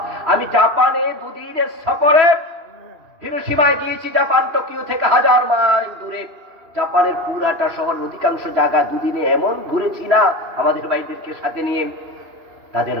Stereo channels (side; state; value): left; late; 2.8 ms